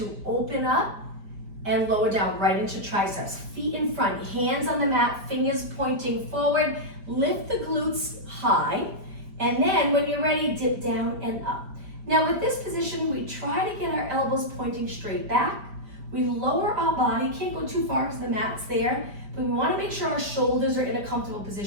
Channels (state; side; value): late; left; 5.0 ms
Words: open up, and lower down right into triceps. Feet in front, hands on the mat, fingers pointing forward. Lift the glutes high. And then when you're ready, dip down and up. Now with this position, we try to get our elbows pointing straight back. We lower our body, can't go too far because the mat's there, but we wanna make sure our shoulders are in a comfortable